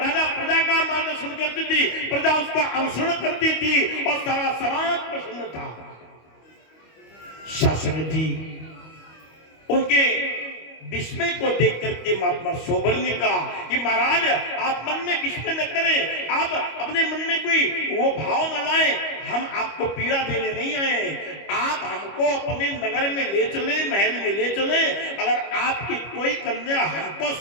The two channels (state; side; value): late; right; 25 ms